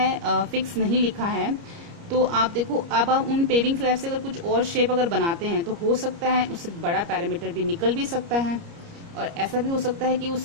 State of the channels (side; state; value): left; late; 30 ms